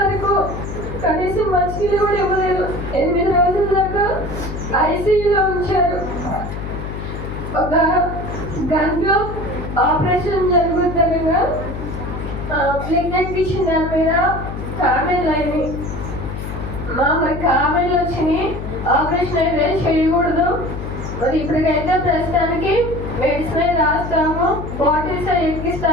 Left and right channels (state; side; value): noise; left; hum, 7 dB below the sound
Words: వరకు కనీసం మంచినీళ్ళు కూడా ఇవ్వలేదు. 8 రోజుల దాకా ఐసీయూలో ఉంచారు. ఒక గంటలో ఆపరేషన్ జరుగుతుండగా బ్లడ్ ఎక్కించిన దాని మీద కామెంట్లు అయినాయి. మరి కామెంట్లు వచ్చినాయి, ఆపరేషన్ అయితే చేయకూడదు. మరి ఇప్పటికైతే ప్రస్తుతానికి మెడిసిన్ రాస్తాము, బాటిల్స్